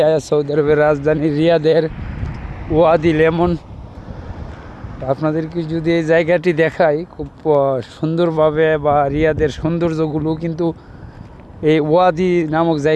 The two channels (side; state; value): both; identical; correlation 1.00